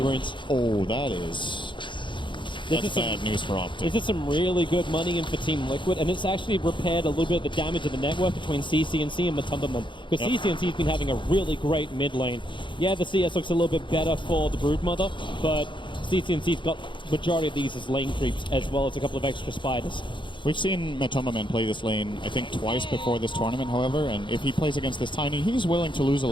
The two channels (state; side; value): late; right; 0.23 ms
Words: Oh, that's bad news for Optic. This is some really good money in for Team Liquid, and it's actually repaired a little bit of the damage of the network between CCNC and Matumbaman, because CCNC's been having a really great mid lane. Yeah, the CS looks a little bit better for the Broodmother, but CCNC's got majority of these as lane creeps, as well as a couple of extra spiders. We've seen Matumbaman play this lane, I think, twice before this tournament, however, and if he plays against this Tiny, he's willing to lose a